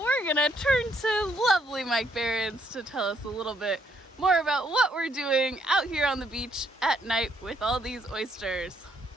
gonna turn to lovely Mike Behrens to tell us a little bit more about what we're doing out here on the beach at night with all these oysters.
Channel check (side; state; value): both; normal; correlation 0.71